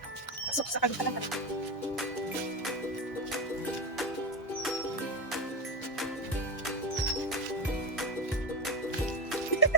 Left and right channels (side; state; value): both; normal; correlation 0.14